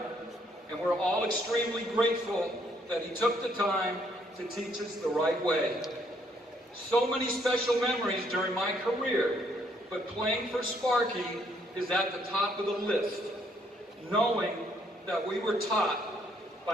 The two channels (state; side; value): normal; both; correlation 0.69